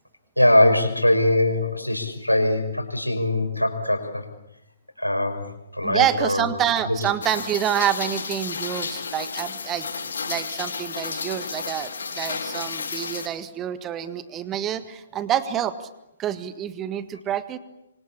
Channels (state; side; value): inverted; both; correlation -0.48